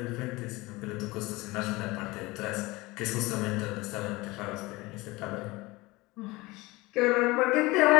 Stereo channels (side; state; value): right; quieter; 21.7 dB